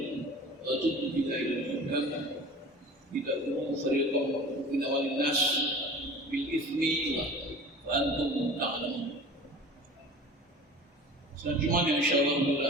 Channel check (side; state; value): both; normal; correlation 0.40